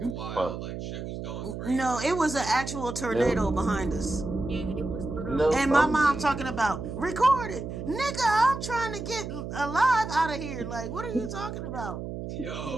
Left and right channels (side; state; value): right; noise; hum, 7 dB below the sound